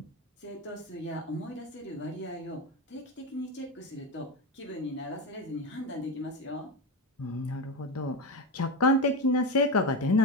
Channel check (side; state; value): both; normal; correlation 0.17